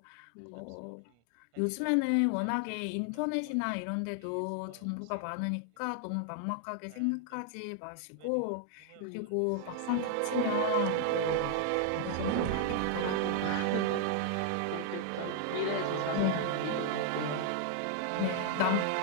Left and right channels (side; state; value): both; different; correlation 0.00